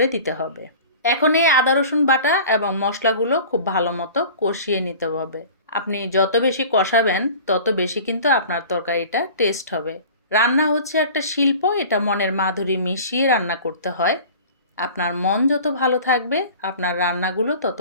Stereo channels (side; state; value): both; inverted; correlation -0.41